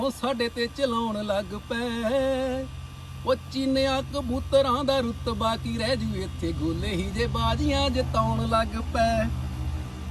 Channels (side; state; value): both; identical; correlation 1.00